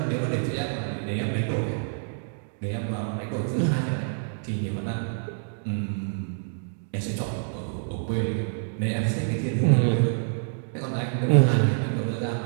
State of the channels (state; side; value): silent; left; digital silence